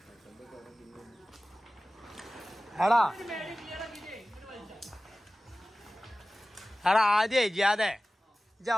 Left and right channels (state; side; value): normal; both; correlation 0.97